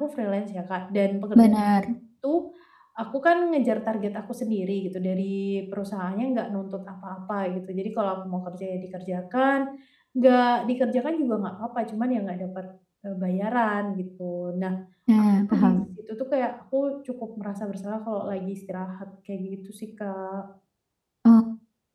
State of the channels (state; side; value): identical; both; correlation 1.00